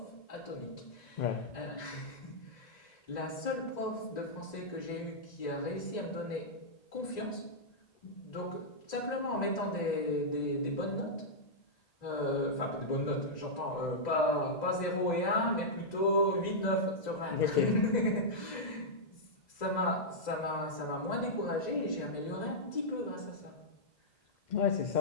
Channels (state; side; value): late; right; 2.0 ms